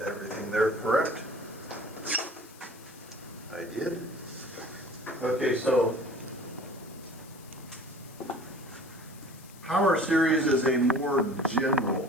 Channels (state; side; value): noise; left; hiss, 22 dB below the sound